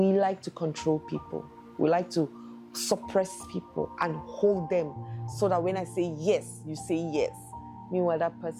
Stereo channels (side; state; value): both; identical; correlation 1.00